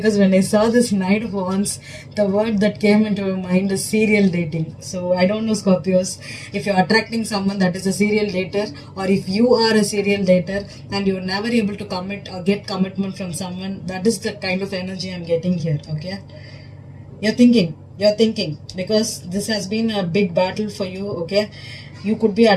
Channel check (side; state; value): both; identical; correlation 1.00